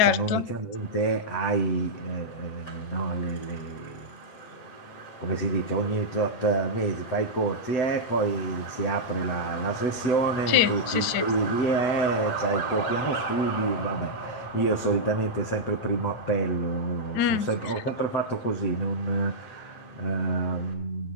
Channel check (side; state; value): right; late; 7.9 ms